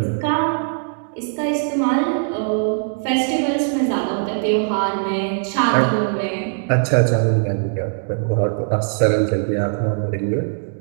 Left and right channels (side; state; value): left; silent; digital silence